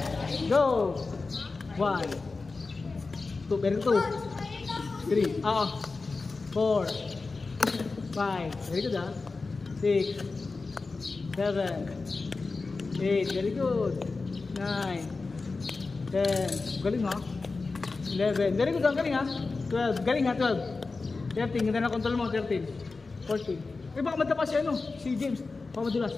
go. 1, 2, very good. 3, 4, 5, very good 6, 7, 8, very good. 9, 10, galing 11, very good galing 12, galing 12. 13, ganda na control mo, 13, 14. Baka madapa si si James. Baka madulas.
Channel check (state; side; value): quieter; right; 3.9 dB